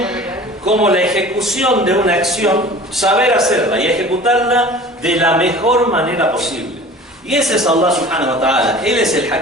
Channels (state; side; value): normal; both; correlation 0.42